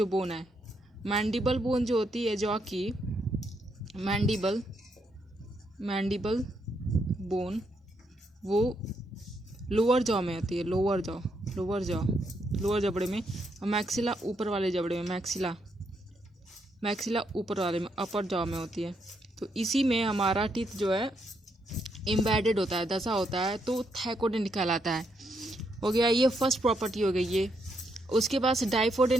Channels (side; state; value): both; normal; correlation 0.78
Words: बोन है, मैंडिबल बोन जो होती है जो कि मैंडिबल बोन वो लोअर जॉ में होती है, लोअर जबड़े में। और मैक्सिला ऊपर वाले जबड़े में, मैक्सिला ऊपर वाले में, अपर जॉ में होती है। तो इसी में हमारा टीथ जो है एम्बेडेड होता है, दसा होता है, तो थैकोडेंट कहलाता है। हो गया ये फर्स्ट प्रॉपर्टी हो गई ये। उसके बाद